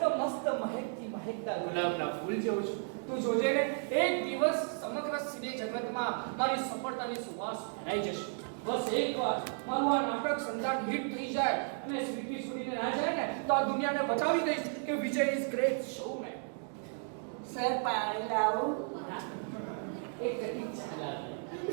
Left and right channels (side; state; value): left; silent; 55 dB below the other